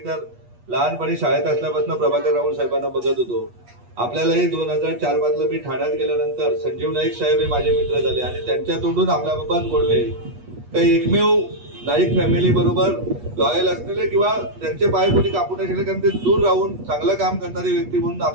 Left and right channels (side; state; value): left; late; 8.3 ms